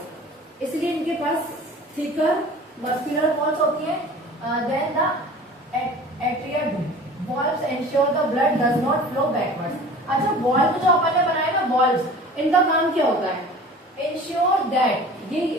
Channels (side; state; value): both; normal; correlation 0.42